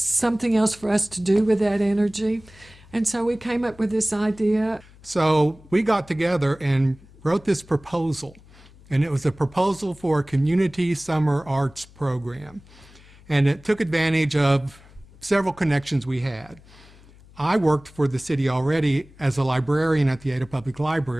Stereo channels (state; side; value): noise; left; hum, 24 dB below the sound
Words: to do with that energy. And so we came up with this idea. So we got together and wrote this proposal. And it was a proposal for a community summer arts program. And it took advantage of several connections we had. I worked for the city already as a librarian at the Ada Public